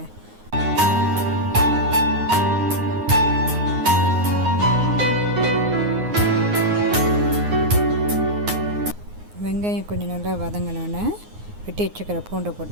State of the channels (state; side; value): late; left; 9.6 ms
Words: வெங்காயம் கொஞ்சம் நல்லா வதங்கினோன்னே வெட்டி வச்சுக்கிற பூண்டை